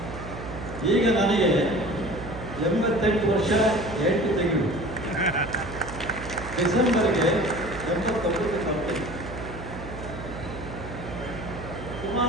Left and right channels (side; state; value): right; noise; hum, 10 dB below the sound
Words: ಈಗ ನನಗೆ 88 ವರ್ಷ 8 ತಿಂಗಳು. ಡಿಸೆಂಬರ್ಗೆ 89 ಬರ್ತೀನಿ.